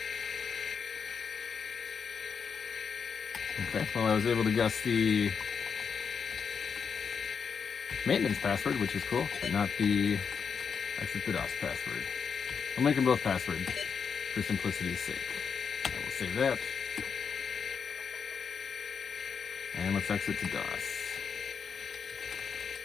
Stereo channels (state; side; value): quieter; right; 6.3 dB